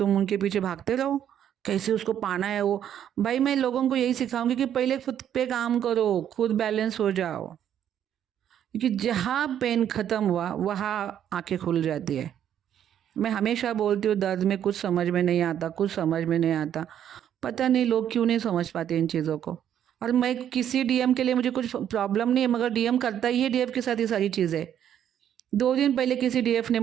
उनके पीछे भागते रहो, कैसे उसको पाना है वो। भाई मैं लोगों को यही सिखाऊंगी कि पहले खुद पे काम करो, खुद बैलेंस हो जाओ। क्योंकि जहाँ पेन ख़त्म हुआ वहाँ आंखें खुल जाती है। मैं हमेशा बोलती हूँ दर्द में कुछ समझ में नहीं आता, कुछ समझ में नहीं आता। पता नहीं लोग क्यों नहीं समझ पाते इन चीज़ों को। और मैं किसी डीएम के लिए मुझे कुछ प्रॉब्लम नहीं है, मगर डीएम करता ही है डीएफ के साथ ये सारी चीज़ें। 2 दिन पहले किसी डीएफ ने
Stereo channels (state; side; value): quieter; left; 9.9 dB